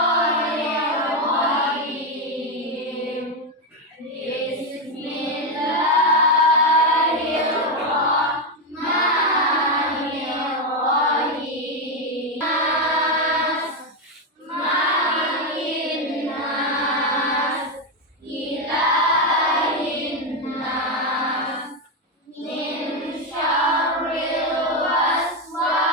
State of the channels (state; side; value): normal; both; correlation 0.08